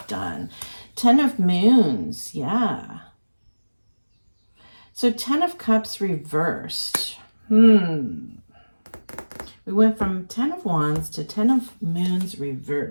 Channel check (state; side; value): inverted; both; correlation -1.00